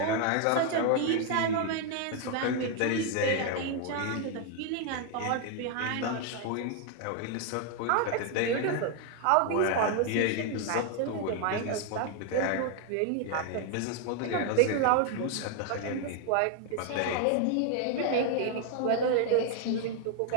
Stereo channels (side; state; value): both; different; correlation 0.00